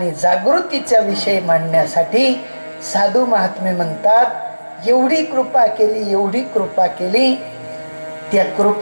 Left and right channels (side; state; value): both; inverted; correlation -1.00